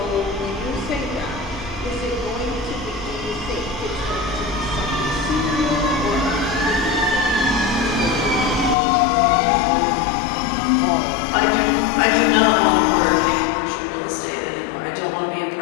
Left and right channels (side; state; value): right; drops out; at 8.8 s